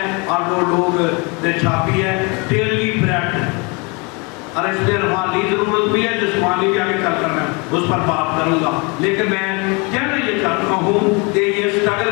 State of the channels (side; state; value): right; quieter; 30.0 dB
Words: اور وہ لوگ نے چھاپی ہے، ڈیلی بریڈ، اور اس لیے روحانی ضرورت بھی ہے، جسمانی بھی آگے چل کر میں اس پر بات کروں گا، لیکن میں کہنا یہ چاہتا ہوں کہ یہ سٹرگل